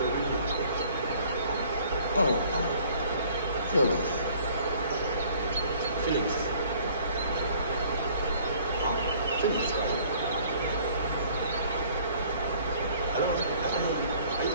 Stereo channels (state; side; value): inverted; both; correlation -0.56